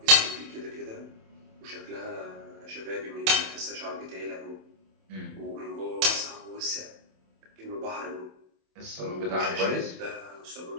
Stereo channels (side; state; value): left; late; 27 ms